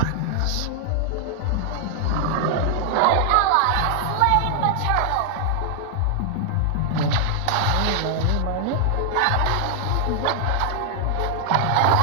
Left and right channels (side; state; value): both; different; correlation 0.00